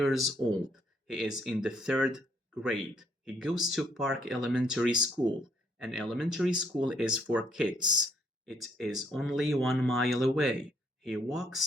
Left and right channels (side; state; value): both; normal; correlation 0.70